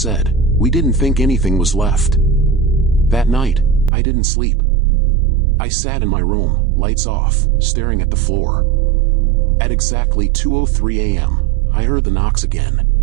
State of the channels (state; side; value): drops out; left; at 3.9 s